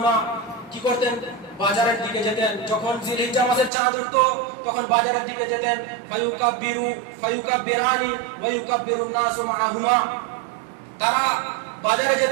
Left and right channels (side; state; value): left; drops out; at 3.7 s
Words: কি করতেন? বাজারের দিকে যেতেন। যখন জিলহিজ্জা মাসের চাঁদ উঠতো তখন বাজারের দিকে যেতেন। ফায়ুকাব্বিরানি ওয়া ইউকাব্বিরুন নাসু মাআহুমা, তারা বাজারে